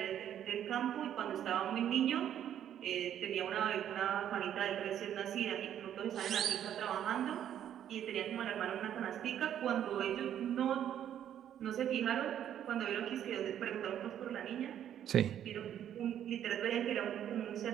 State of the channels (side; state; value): left; quieter; 10.3 dB